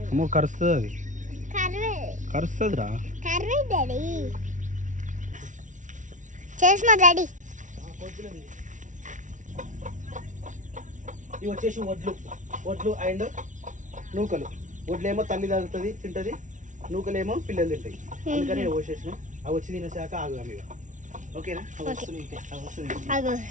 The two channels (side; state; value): left; late; 0.37 ms